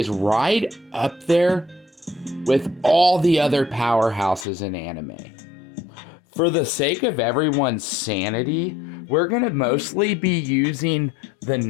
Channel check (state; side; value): drops out; right; at 4.5 s